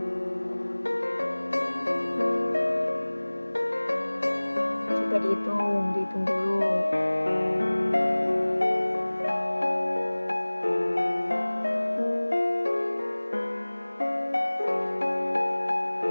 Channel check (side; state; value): both; inverted; correlation -1.00